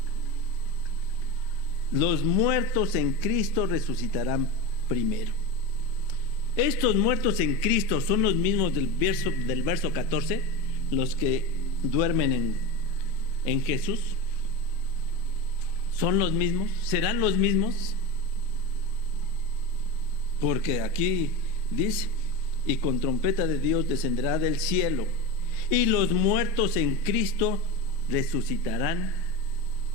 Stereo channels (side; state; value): right; late; 8.3 ms